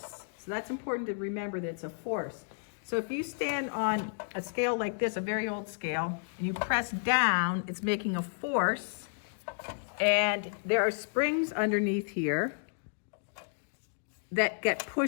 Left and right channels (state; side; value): silent; right; digital silence